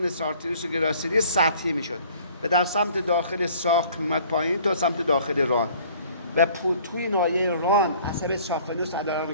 سارتریوس و گراسیلی سطحی میشد و در سمت داخل ساق میمد پایین تا سمت داخل ران و توی ناحیه ران عصب سافنوس علاوه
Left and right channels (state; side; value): inverted; both; correlation -0.54